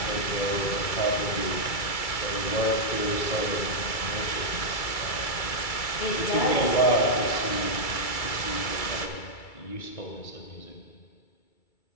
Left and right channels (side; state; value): right; late; 2.3 ms